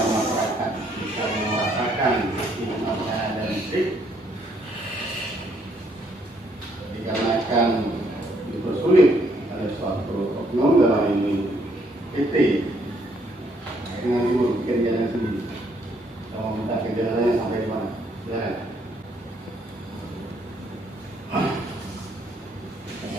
masyarakat bisa merasakan nikmatnya dan listrik dikarenakan dipersulit oleh suatu oknum dalam ini PT dengan ibu bikin jalan sendiri. Kita mau minta kejalannya sampai di mana? Silakan.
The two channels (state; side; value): normal; both; correlation 0.69